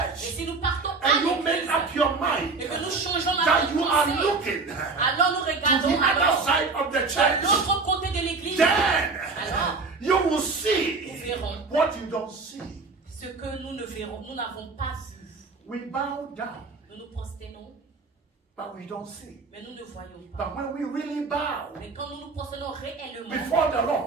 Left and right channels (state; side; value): quieter; left; 4.1 dB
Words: si nous partons à and you make l'église up your mind et que nous changeons la that you are pensée, looking alors nous to the regardons other alors side of the de church, l'autre côté de l'église. then Alors, you will nous see verrons what you don't see. ce que nous ne verrons, nous n'avons pas vu. We bow down, Nous nous prosternons, but we don't see. mais nous ne voyons pas. But when we really bow Mais quand nous nous prosternons réellement before the